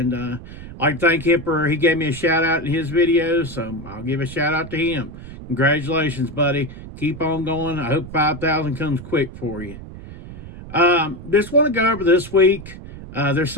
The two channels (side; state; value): right; noise; rumble, 13 dB below the sound